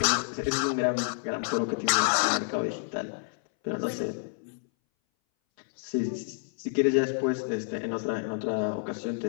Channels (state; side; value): silent; right; 59 dB below the other